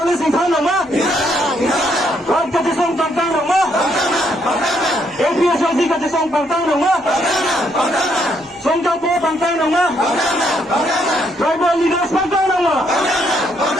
là sinh thang nào má? Rồi cái chia số tăng tăng nào má? APS cái chia số tăng tăng nào má? Song Cao Po tăng tăng nào má? Tribal leaders tăng tăng nào má?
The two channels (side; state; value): both; normal; correlation 0.73